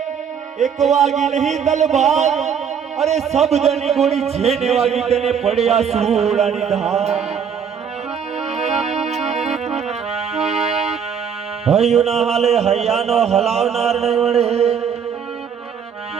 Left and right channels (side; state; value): left; quieter; 7.3 dB